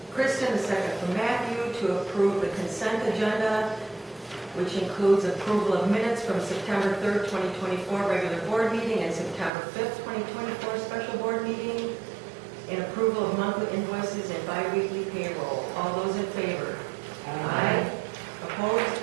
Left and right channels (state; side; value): drops out; left; at 9.5 s